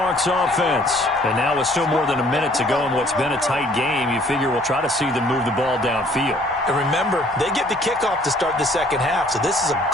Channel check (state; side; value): normal; both; correlation 0.59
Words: offense. And now with still more than a minute to go in what's been a tight game, you figure we'll try to see them move the ball downfield. And remember, they get the kickoff to start the second half, so this is a